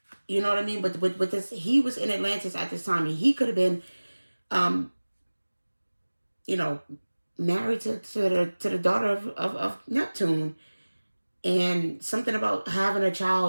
you know what I mean? But with this, he was in Atlantis at this time, and he could have been, you know, married to the daughter of Neptune. And something about having a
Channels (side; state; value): both; inverted; correlation -1.00